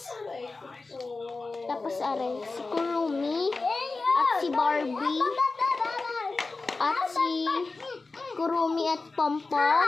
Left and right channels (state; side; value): quieter; right; 3.7 dB